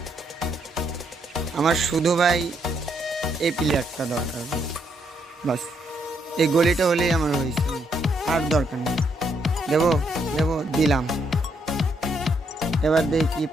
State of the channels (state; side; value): normal; both; correlation 0.75